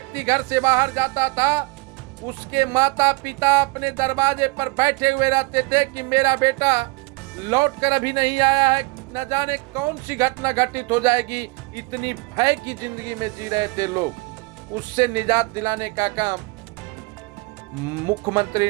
घर से बाहर जाता था उसके माता पिता अपने दरवाजे पर बैठे हुए रहते थे कि मेरा बेटा लौट कर अभी नहीं आया है, न जाने कौन सी घटना घटित हो जाएगी। इतनी भय की जिंदगी में जी रहे थे लोग। उससे निजात दिलाने का काम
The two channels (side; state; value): left; quieter; 25.2 dB